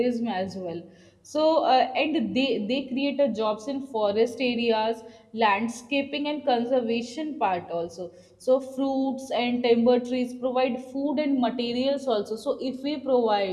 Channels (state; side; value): identical; both; correlation 1.00